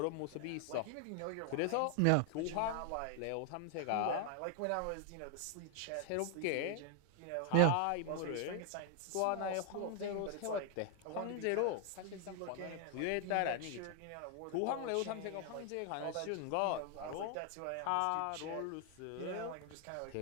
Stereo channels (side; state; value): both; different; correlation 0.00